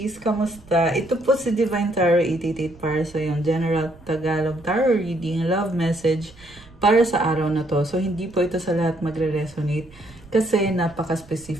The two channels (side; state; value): right; noise; rumble, 23 dB below the sound